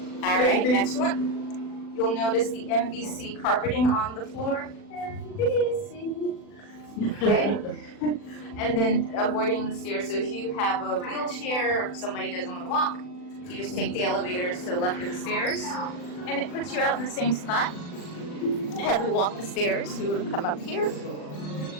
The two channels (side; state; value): right; late; 40 ms